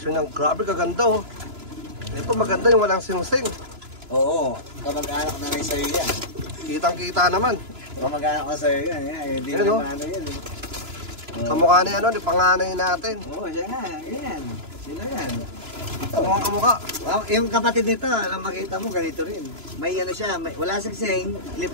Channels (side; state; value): left; late; 2.9 ms